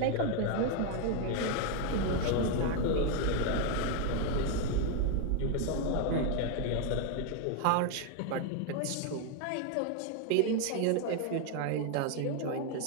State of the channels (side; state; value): both; different; correlation 0.01